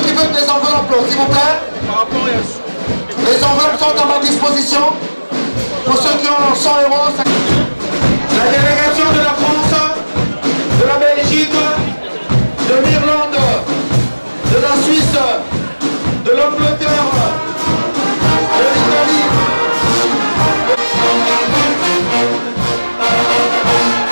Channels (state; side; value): inverted; both; correlation -1.00